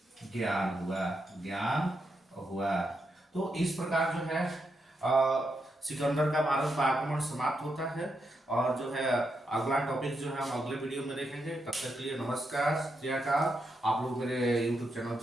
ज्ञान हुआ। तो इस प्रकार जो है सिकंदर का भारत पर आक्रमण समाप्त होता है। और जो है अगला टॉपिक जो है हम अगले वीडियो में देखेंगे। तब तक के लिए नमस्कार, श्रीकाल। आप लोग मेरे YouTube चैनल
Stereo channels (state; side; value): normal; both; correlation 0.83